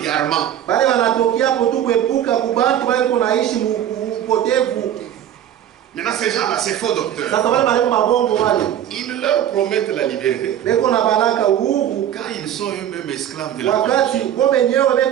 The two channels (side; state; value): left; quieter; 10.7 dB